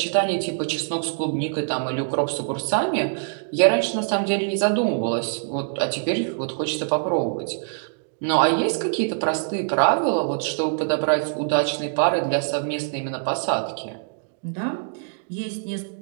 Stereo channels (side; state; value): left; silent; digital silence